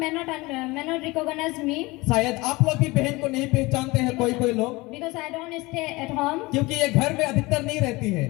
not recognize me शायद आप लोग भी बहन को नहीं पहचानते हैं कोई लोग, because I don't stay at home, क्योंकि ये घर में अधिकतर नहीं रहती है,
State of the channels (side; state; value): right; quieter; 22.6 dB